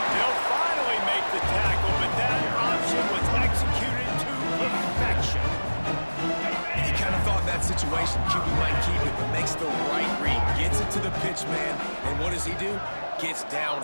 They'll finally make the tackle, but that option was executed to perfection. And you kind of thought that situation, QB might keep it, but makes the right read. Gets it to the pitch man, and what does he do? Gets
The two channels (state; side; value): inverted; both; correlation -1.00